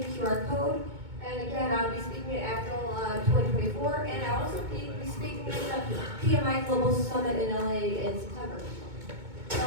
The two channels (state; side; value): late; left; 2.2 ms